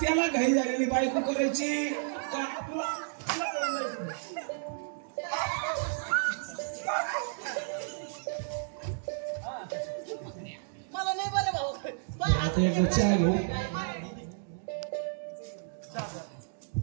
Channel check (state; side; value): silent; left; digital silence